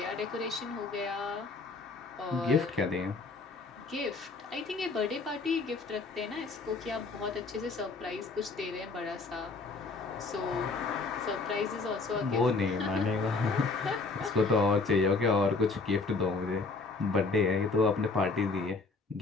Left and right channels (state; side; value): quieter; right; 3.9 dB